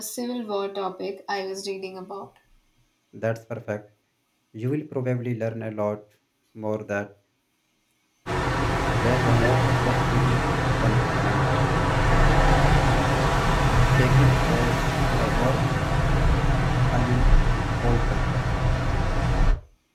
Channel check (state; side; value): identical; both; correlation 1.00